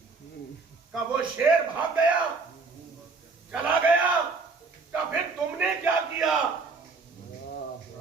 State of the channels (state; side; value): quieter; left; 4.2 dB